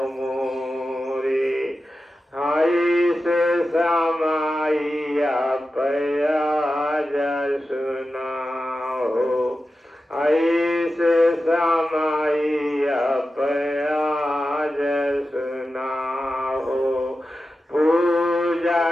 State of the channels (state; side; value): normal; both; correlation 0.92